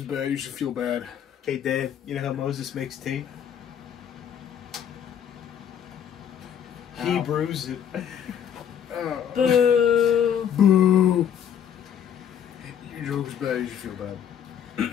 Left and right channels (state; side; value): quieter; right; 8.9 dB